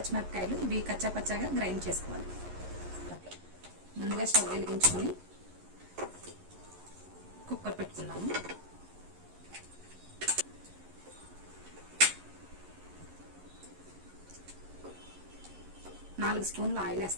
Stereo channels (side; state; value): left; late; 11 ms